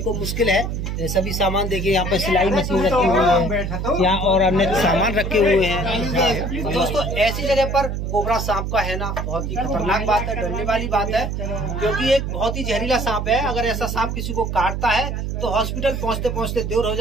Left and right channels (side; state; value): right; noise; hum, 3 dB below the sound